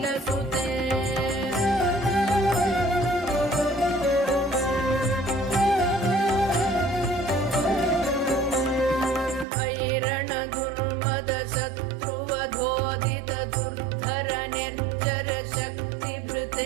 ऐरण दुर्मद शत्रुवधोदित दुर्धर निर्जर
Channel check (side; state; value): left; drops out; at 9.5 s